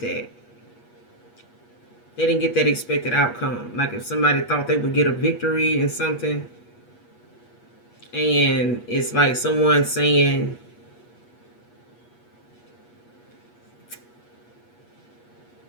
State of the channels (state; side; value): late; right; 8.3 ms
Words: They didn't get that expected outcome. Like if somebody thought they would get a victory in something, and it's like someone saying,